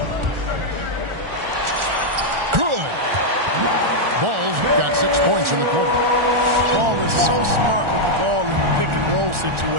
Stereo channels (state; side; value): late; left; 1.4 ms